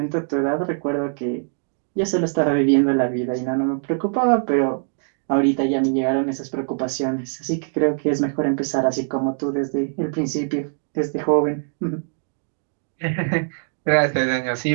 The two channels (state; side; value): silent; left; digital silence